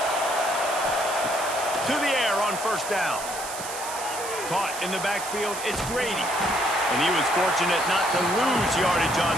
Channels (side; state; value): right; noise; hiss, 9 dB below the sound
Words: To the air on first down. Caught in the backfield, it's Grady. And he was fortunate not to lose yardage